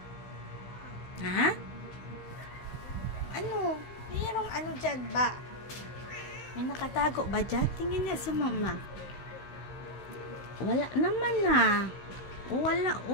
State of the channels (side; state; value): right; late; 16 ms